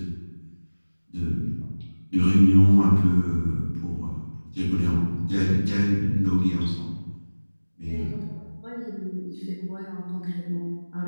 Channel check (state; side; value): inverted; both; correlation -1.00